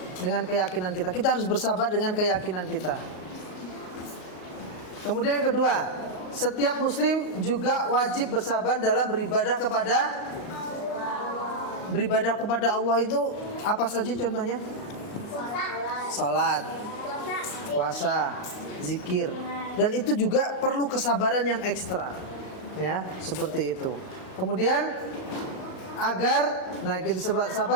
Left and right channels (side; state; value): right; late; 38 ms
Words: kita harus bersabar dengan keyakinan kita. Kemudian yang kedua, setiap muslim juga wajib bersabar dalam beribadah kepada Allah itu apa saja contohnya? Salat, puasa, zikir, dan itu juga perlu kesabaran yang ekstra, ya, seperti itu. Kemudian kita